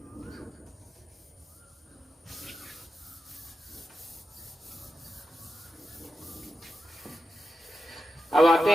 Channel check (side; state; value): both; normal; correlation 0.90